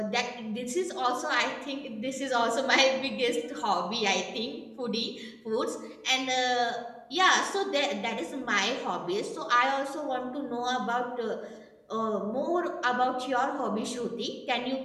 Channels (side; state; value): both; identical; correlation 1.00